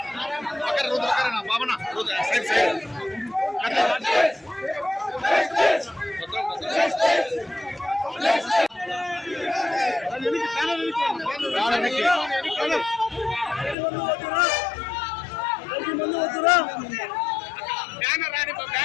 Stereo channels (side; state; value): right; drops out; at 13.8 s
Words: బాబనా సైడ్ సైడ్ బ్యానర్ రాని